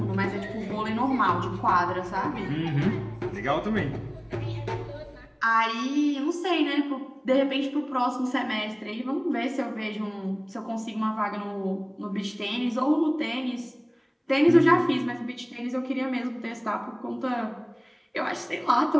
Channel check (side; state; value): both; identical; correlation 1.00